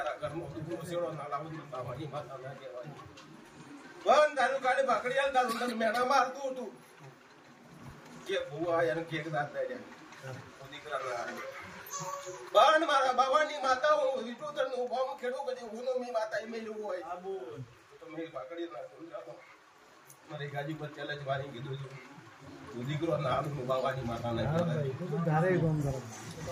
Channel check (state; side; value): identical; both; correlation 1.00